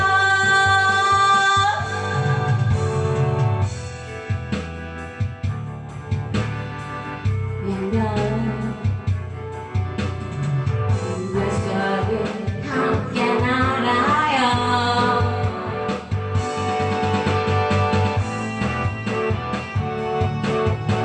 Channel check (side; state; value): both; identical; correlation 1.00